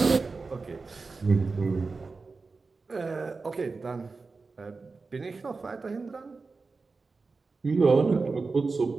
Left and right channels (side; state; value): left; quieter; 4.1 dB